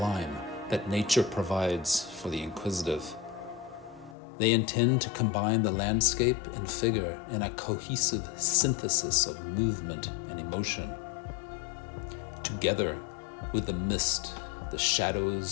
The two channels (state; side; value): drops out; right; at 4.2 s